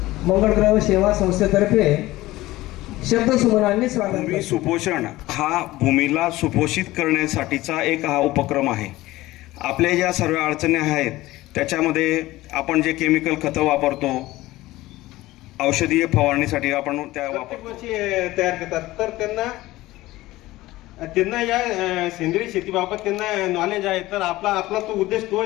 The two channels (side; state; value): right; quieter; 17.8 dB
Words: मंगळग्रह सेवा संस्थेतर्फे शब्दसुमनांनी स्वागत भूमी करतो। सुपोषण हा भूमीला सुपोषित करण्यासाठीचा एक हा उपक्रम आहे। आपल्या ज्या सर्व अडचणी आहेत त्याच्यामध्ये आपण जे केमिकल खतं वापरतो, औषधीय फवारणीसाठी आपण त्या प्रत्येक वर्षी तयार करतात, तर त्यांना या सेंद्रिय शेतीबाबत त्यांना नॉलेज आहे। तर आपला तो उद्देश तो